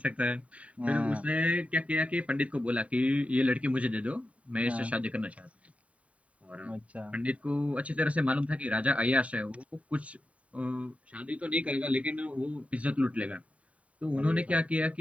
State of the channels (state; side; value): late; left; 0.066 ms